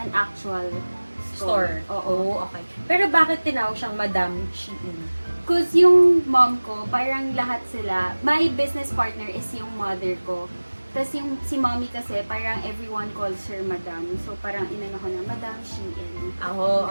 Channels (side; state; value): both; inverted; correlation -1.00